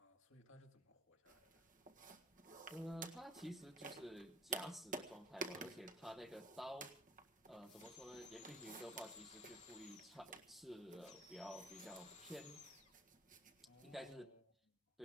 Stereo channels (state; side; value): normal; both; correlation 0.54